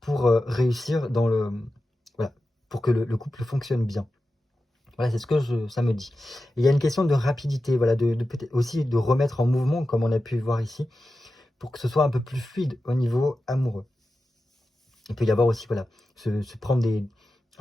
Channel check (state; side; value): normal; both; correlation 0.92